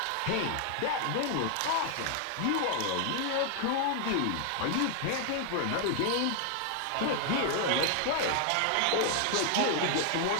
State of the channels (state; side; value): different; both; correlation 0.00